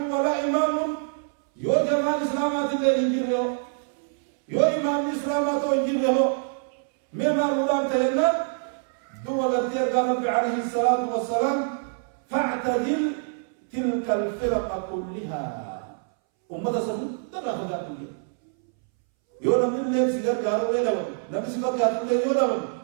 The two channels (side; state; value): left; silent; 62 dB below the other